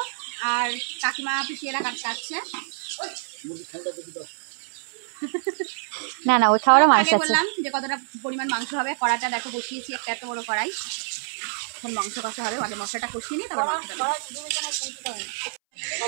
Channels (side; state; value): left; silent; 61 dB below the other